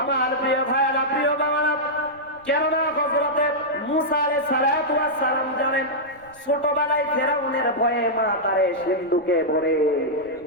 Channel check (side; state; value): right; noise; rumble, 28 dB below the sound